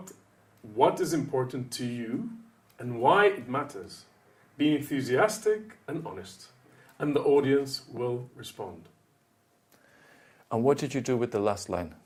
what is important to you and why it matters. Be enthusiastic and honest, and the audience will respond. And what did you do with the last line?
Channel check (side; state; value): both; identical; correlation 1.00